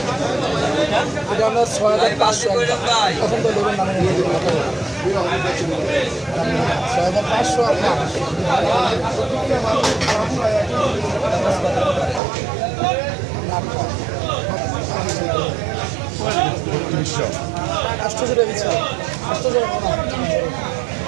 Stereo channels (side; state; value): left; drops out; at 12.2 s